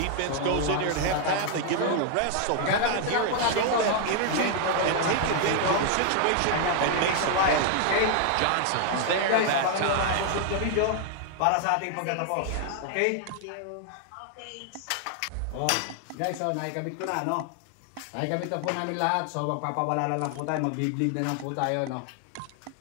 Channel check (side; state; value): both; different; correlation 0.00